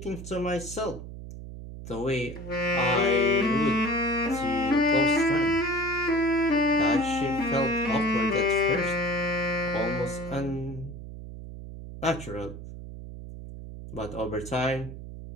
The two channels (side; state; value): right; noise; hum, 11 dB below the sound